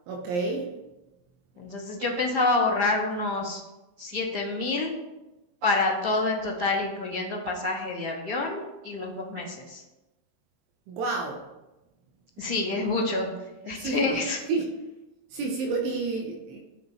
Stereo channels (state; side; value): late; left; 23 ms